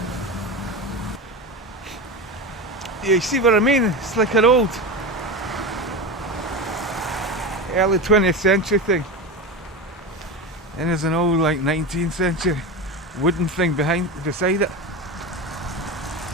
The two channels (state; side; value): normal; both; correlation 0.22